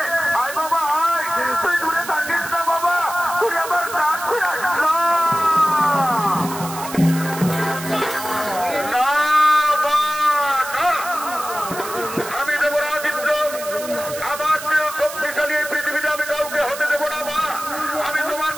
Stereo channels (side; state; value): right; noise; hiss, 11 dB below the sound